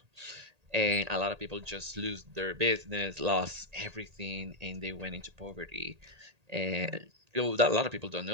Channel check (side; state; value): left; late; 1.8 ms